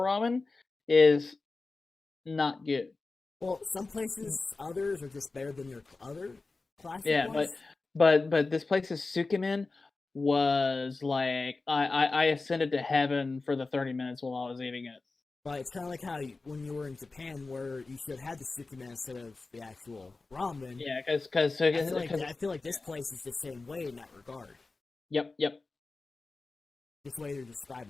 is not good. Well, some places, others are just better than their other classic ones. but this place's sukemen was like I ascended to heaven for the 30 minutes while I was eating it. But it's kind of like how when you were in Japan, where you should have had the sukemen instead of the actual ramen. Yeah, because I feel like this place is the same way in that regard. Yep. This way they're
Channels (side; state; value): right; quieter; 3.7 dB